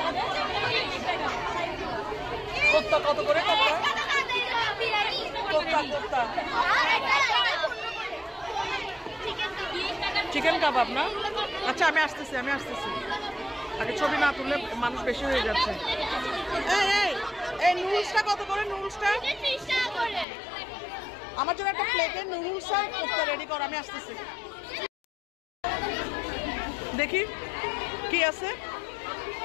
কোপ্তা কত করে? কোপ্তা কোপ্তা চিকেন কাবাব না? আচ্ছা আমি আসতেছি আগে ছবি না তুললে মানুষ বেশি হয়ে যাচ্ছে। এই নুডলসটা কত করে? নুডলসটা আমার জন্য একটা প্লেটে নুডলস আর কোপ্তা রেডি কর, আমি আসতেছি। দেখি কি আছে।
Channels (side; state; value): right; drops out; at 20.2 s